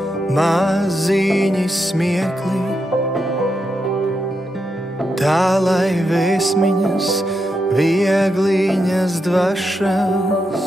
maziņi smiekli, tā lai vēsmiņas, viegliņas dvašas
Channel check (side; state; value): both; normal; correlation 0.84